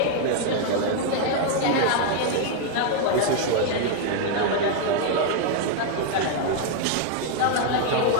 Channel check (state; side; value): different; both; correlation 0.00